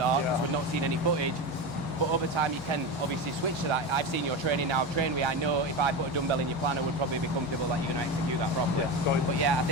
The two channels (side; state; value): both; normal; correlation 0.20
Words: because we've not seen any footage, but over time you can obviously switch to that. I've seen your training now, I've trained with you, I know if I put a dumbbell in your plan I would probably be comfortable that you're going to execute that properly. But yeah, I